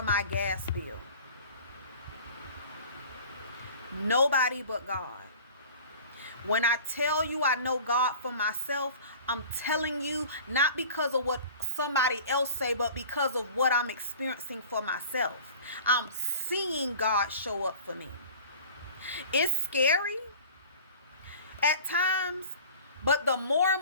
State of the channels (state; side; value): inverted; both; correlation -0.43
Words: my gas bill. Nobody but God. When I tell you I know God for myself, I'm telling you not because of what somebody else say, but because of what I'm experiencing for myself. I'm seeing God show up for me. It's scary at times, but the more